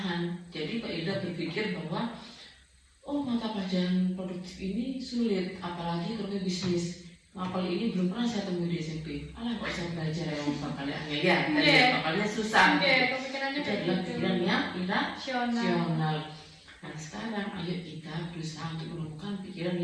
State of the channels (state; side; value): identical; both; correlation 1.00